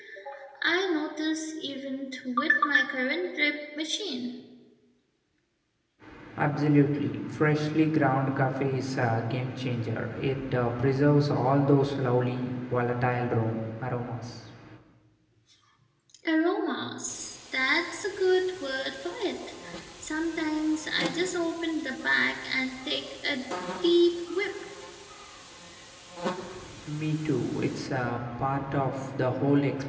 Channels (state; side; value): identical; both; correlation 1.00